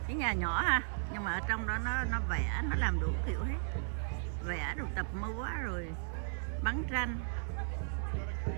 Cái nhà nhỏ ha, nhưng mà ở trong đó nó vẽ, nó làm đủ kiểu hết. Vẽ rồi tập múa rồi bắn tranh.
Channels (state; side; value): silent; left; 54 dB below the other